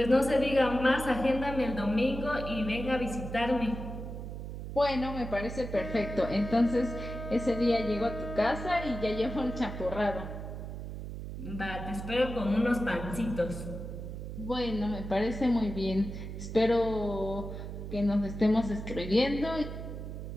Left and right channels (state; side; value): noise; right; hum, 8 dB below the sound